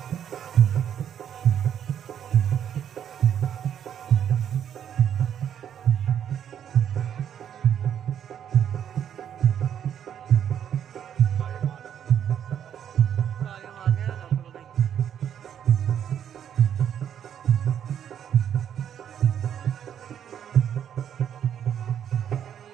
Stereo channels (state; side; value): quieter; left; 9.2 dB